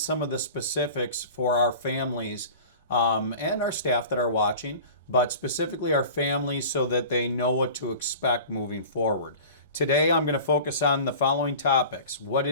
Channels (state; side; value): inverted; both; correlation -0.39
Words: of the specifics for our families and our staff that are watching, but specifically our families so that they know what to expect moving forward. Today, I'm going to focus on the following topics.